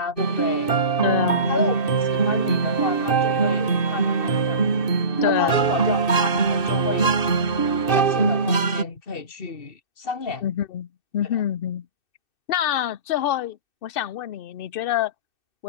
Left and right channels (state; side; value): late; right; 2.6 ms